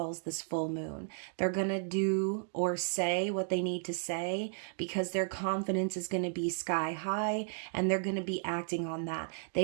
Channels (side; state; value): left; silent; digital silence